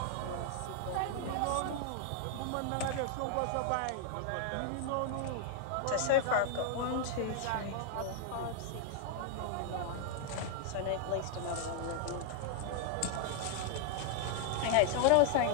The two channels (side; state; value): both; different; correlation 0.00